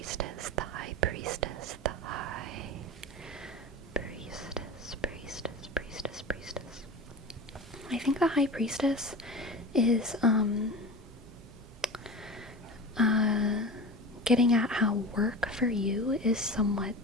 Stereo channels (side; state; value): both; normal; correlation 0.31